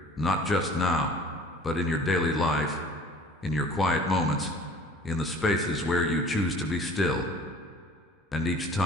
not just now, but in your daily life, in your quiet moments, in the spaces where you choose to be still. And each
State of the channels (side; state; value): both; normal; correlation 0.47